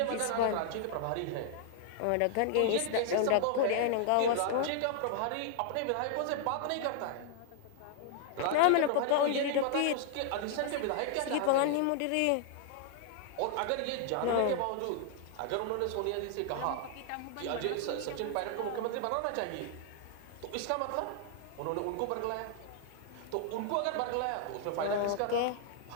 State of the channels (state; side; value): different; both; correlation -0.01